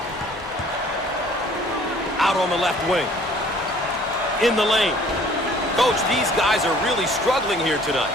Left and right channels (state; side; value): noise; right; hum, 24 dB below the sound